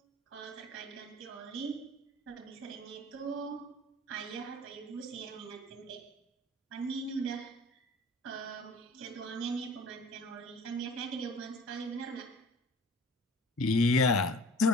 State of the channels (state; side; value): normal; both; correlation 0.45